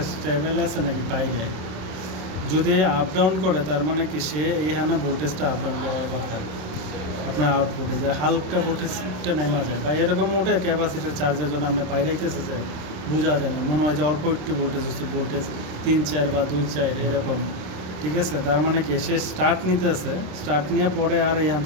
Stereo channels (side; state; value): left; late; 26 ms